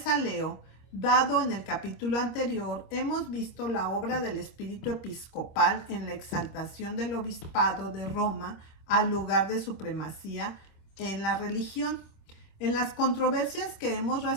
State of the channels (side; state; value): right; late; 26 ms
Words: a Leo, dado en el capítulo anterior, hemos visto la obra del espíritu episcopal en la exaltación del obispado de Roma al lugar de supremacía en la religión. En las controversias que hemos